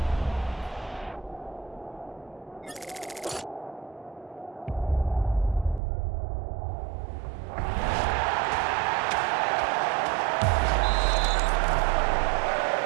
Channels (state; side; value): drops out; left; at 5.8 s